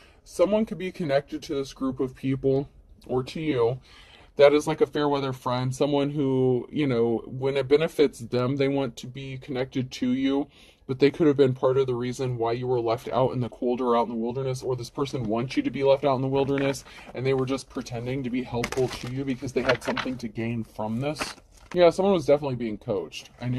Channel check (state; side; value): identical; both; correlation 1.00